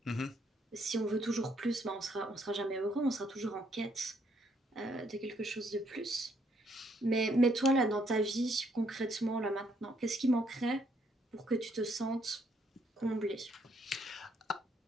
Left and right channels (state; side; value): normal; both; correlation 0.70